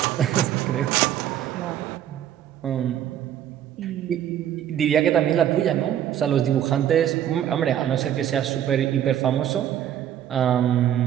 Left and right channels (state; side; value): quieter; left; 10.6 dB